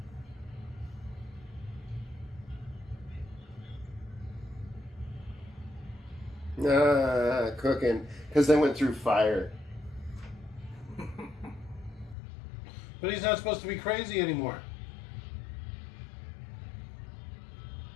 Cooking. Because they went through fire. But he's not supposed to be crazy anymore.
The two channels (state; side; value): drops out; right; at 12.2 s